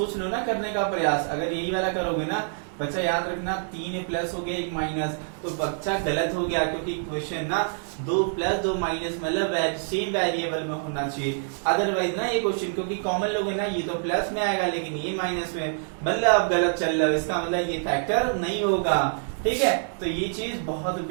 लो ना करने का प्रयास, अगर यही वाला करोगे ना बच्चा याद रखना 3 प्लस हो गया 1 माइनस, तो बच्चा गलत हो गया, क्योंकि क्वेश्चन ना 2 प्लस 2 माइनस मतलब सेम वेरिएबल में होना चाहिए, अदरवाइज ना ये क्वेश्चन क्योंकि कॉमन लोगे ना ये तो प्लस में आएगा लेकिन ये माइनस में, मतलब आप गलत चल रहे हो, इसका मतलब ये फैक्टर नहीं होगा, ठीक है। तो ये चीज बहुत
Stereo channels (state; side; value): silent; left; 61 dB below the other